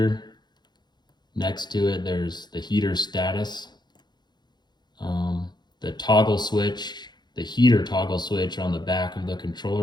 next to it there's the heater status. The toggle switch, the heater toggle switch on the back of the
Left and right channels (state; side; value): late; right; 0.21 ms